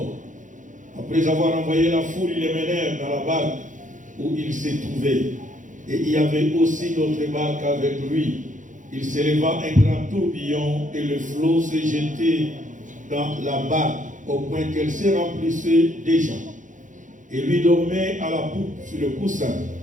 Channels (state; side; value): late; left; 0.37 ms